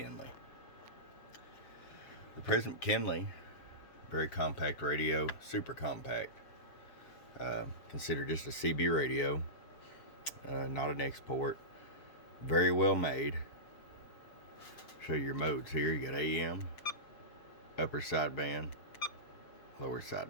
The President McKinley, very compact radio, super compact. Considered just a CB radio, not an export. Very well made. Show you your modes here. You got AM, upper sideband, lower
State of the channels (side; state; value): right; late; 7.3 ms